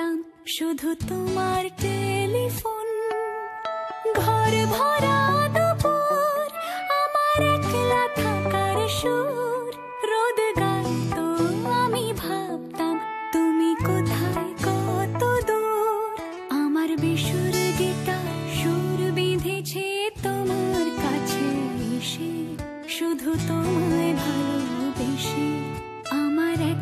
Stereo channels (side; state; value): both; identical; correlation 1.00